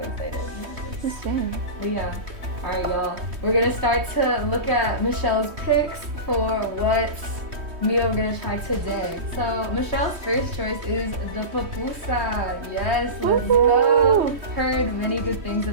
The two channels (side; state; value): left; late; 3.1 ms